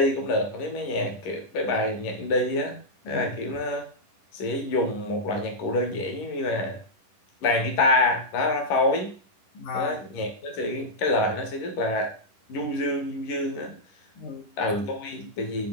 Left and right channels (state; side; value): late; right; 10 ms